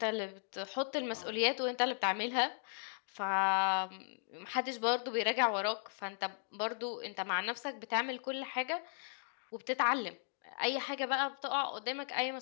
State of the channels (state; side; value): silent; right; digital silence